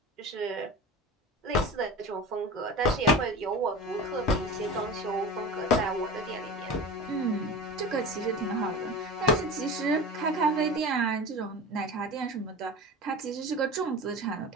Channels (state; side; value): normal; both; correlation 0.32